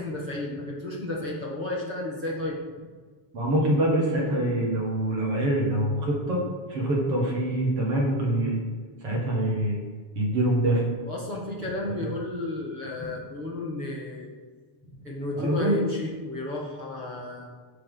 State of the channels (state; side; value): late; left; 6.8 ms